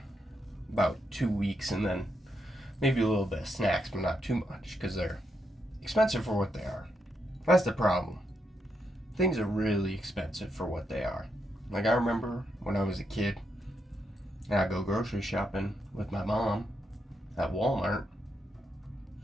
about 2 weeks, and then maybe a little bit of snacks, but not too much, because they're expensive for what they are. That's the problem. Things are really expensive for what they are. Like, I remember when I was a kid, and I'd go grocery shopping with my mom at Walmart,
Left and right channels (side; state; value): both; normal; correlation 0.81